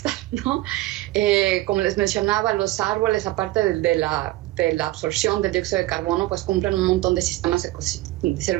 ¿no? Como les mencionaba, los árboles, aparte de la absorción del dióxido de carbono, pues cumplen un montón de de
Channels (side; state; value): left; quieter; 17.5 dB